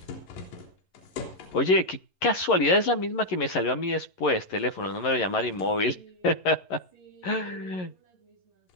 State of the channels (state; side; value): late; right; 11 ms